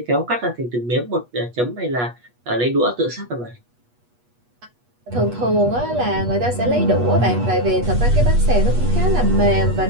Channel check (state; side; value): late; left; 8.3 ms